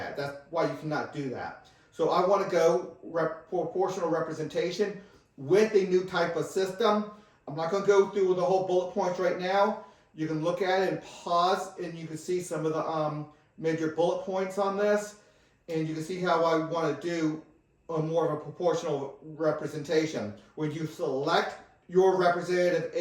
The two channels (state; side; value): identical; both; correlation 1.00